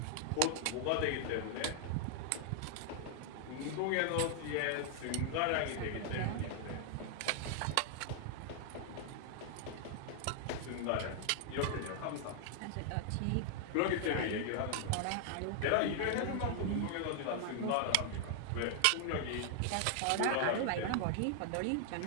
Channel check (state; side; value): different; both; correlation 0.00